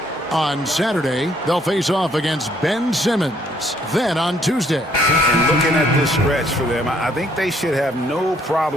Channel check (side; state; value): both; normal; correlation 0.66